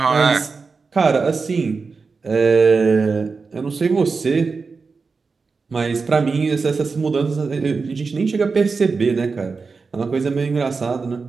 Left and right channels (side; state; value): left; quieter; 4.6 dB